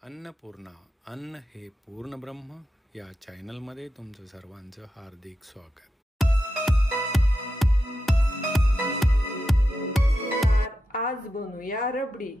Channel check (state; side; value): normal; both; correlation 0.88